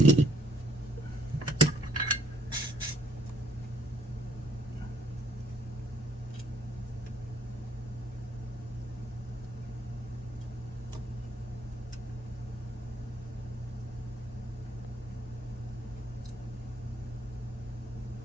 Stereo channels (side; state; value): both; normal; correlation 0.67